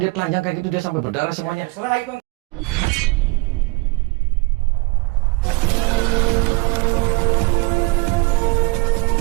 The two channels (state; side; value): quieter; left; 25.9 dB